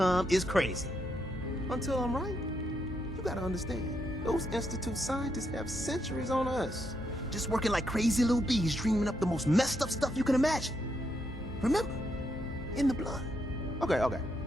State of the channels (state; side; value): normal; both; correlation 0.79